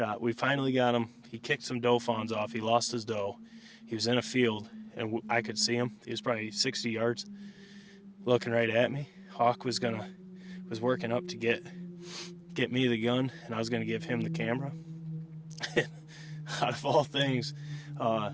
We finally got him. He kicked some doe fawns off. He lost his doe. He was in a field, and I could see him. He was probably 60 yards, looking right at me. Hawk was working up to get me the gun, and I was gonna give him the camera. Out of all things, a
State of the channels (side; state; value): both; identical; correlation 1.00